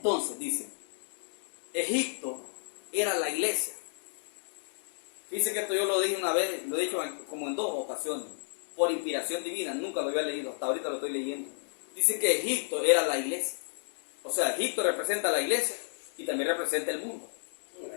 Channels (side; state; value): right; silent; digital silence